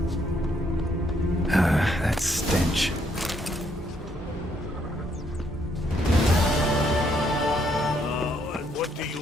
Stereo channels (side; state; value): both; normal; correlation 0.71